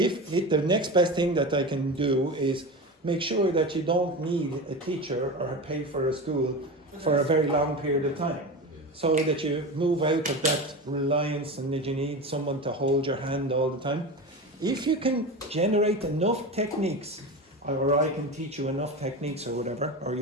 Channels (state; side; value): normal; both; correlation 0.26